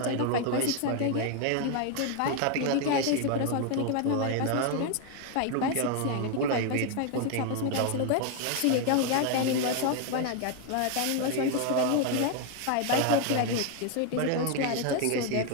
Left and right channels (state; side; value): different; both; correlation 0.01